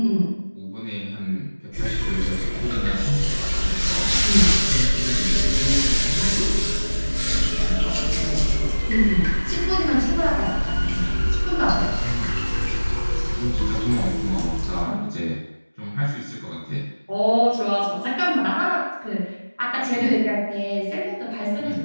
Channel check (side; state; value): both; inverted; correlation -1.00